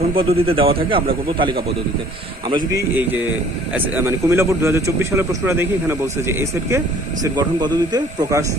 পদ্ধতিতে দেওয়া থাকে আমরা করব তালিকা পদ্ধতিতে। আমরা যদি এই যে মানে কুমিল্লা বোর্ড 2024 সালের প্রশ্নটা দেখি, এখানে বলছে যে এই সেটকে সেট গঠন পদ্ধতিতে প্রকাশ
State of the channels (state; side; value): normal; both; correlation 0.54